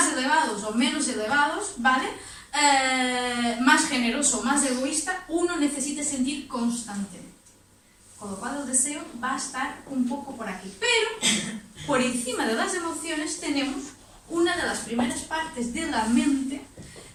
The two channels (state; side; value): identical; both; correlation 1.00